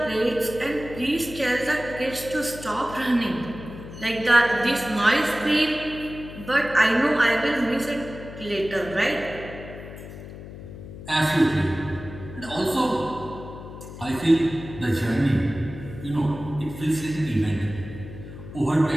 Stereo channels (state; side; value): noise; left; hum, 13 dB below the sound